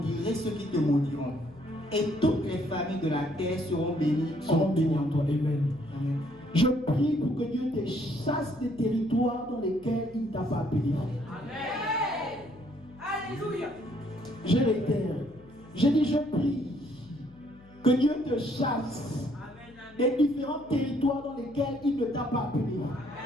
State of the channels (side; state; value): left; noise; hum, 24 dB below the sound